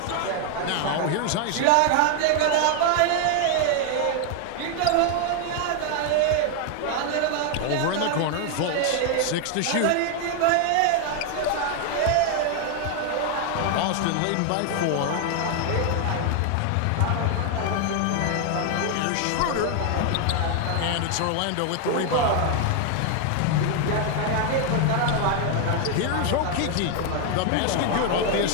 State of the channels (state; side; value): different; both; correlation 0.01